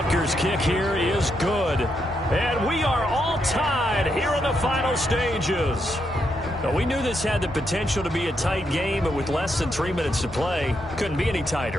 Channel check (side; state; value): both; normal; correlation 0.80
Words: kick here is good. And we are all tied here in the final stages. Now, we knew this had the potential to be a tight game, but with less than 3 minutes to play, couldn't be any